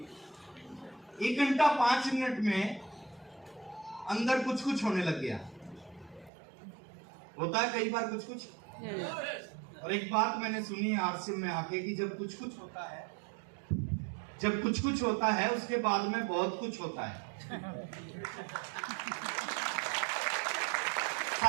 1 घंटा 5 मिनट में अंदर कुछ कुछ होने लग गया। होता है कई बार कुछ कुछ। और एक बात मैंने सुनी है आरसीएम में आके कि जब कुछ कुछ होता है उसके बाद में बहुत कुछ होता है।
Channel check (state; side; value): drops out; left; at 6.3 s